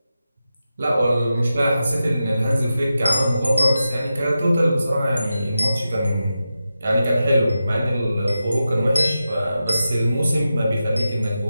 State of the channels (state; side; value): inverted; both; correlation -0.91